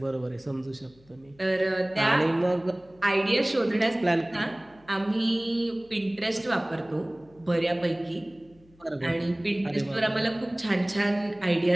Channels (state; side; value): noise; left; hum, 29 dB below the sound